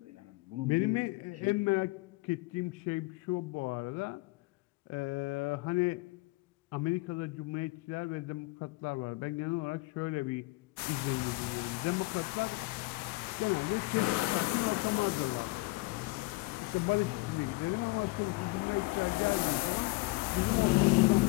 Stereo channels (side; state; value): right; quieter; 23.0 dB